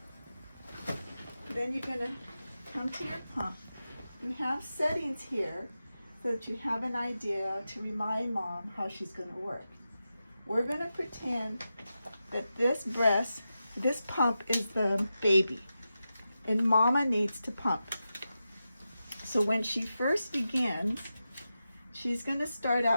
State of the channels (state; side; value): inverted; both; correlation -0.91